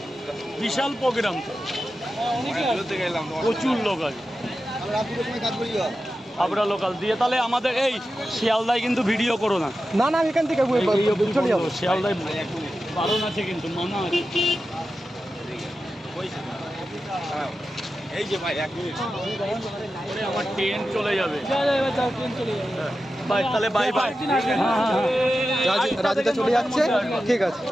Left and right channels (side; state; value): both; normal; correlation 0.92